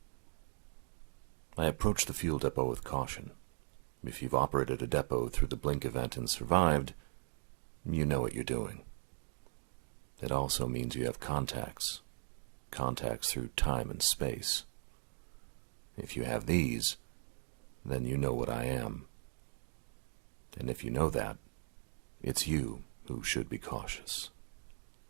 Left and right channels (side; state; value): left; silent; digital silence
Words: I approached the fuel depot with caution. If you've operated a depot through the Blink event and survived, you know what you're doing. It also means you have contacts through time and space. If you have these, then you know what I am. And if you know that, it's you who should be cautious.